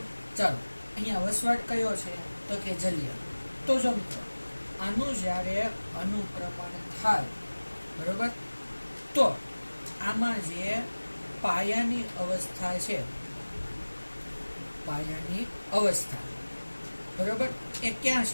ચાલો, અહીંયા વસવાટ કયો છે? તો કે જલીય. તો જો મિત્રો, આનું જ્યારે અનુક્રમણ થાય, બરાબર, તો આમાં જે પાયાની અવસ્થા છે, પાયાની અવસ્થા, બરાબર, એ ક્યાં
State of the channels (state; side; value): inverted; both; correlation -1.00